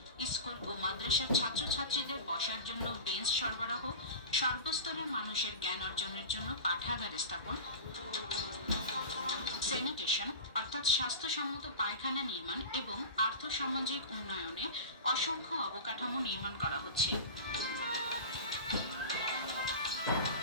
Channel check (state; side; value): inverted; both; correlation -0.30